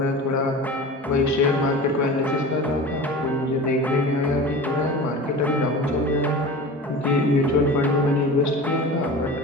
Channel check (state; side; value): normal; both; correlation 0.34